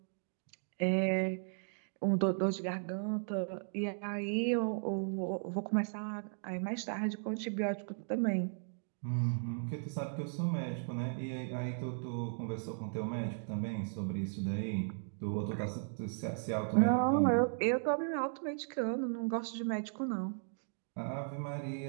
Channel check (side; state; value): left; silent; digital silence